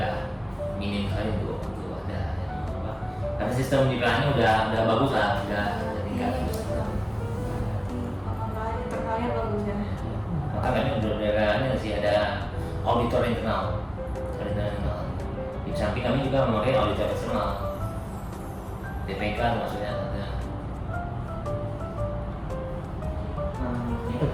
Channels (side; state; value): both; identical; correlation 1.00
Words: minim sekali untuk ada apa. Karena sistem di PLN udah bagus lah, udah tingkat. Internalnya bagus ya. Maka kami udah sih ada auditor internal. Di samping kami juga memakai auditor eksternal. DPK maksudnya ada.